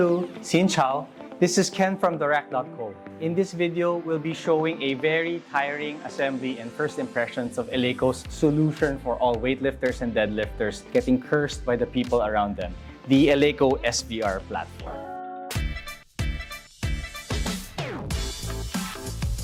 xin chao. This is Ken from TheRack.co. In this video, we'll be showing a very tiring assembly and first impressions of Eleiko's solution for all weightlifters and deadlifters getting cursed by the people around them, the Eleiko SVR platform.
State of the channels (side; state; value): both; identical; correlation 1.00